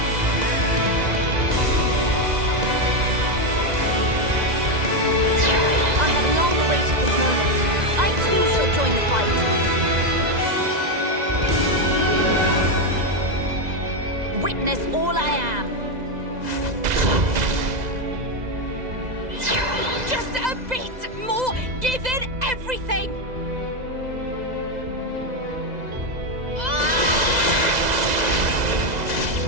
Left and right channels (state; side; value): late; left; 2.0 ms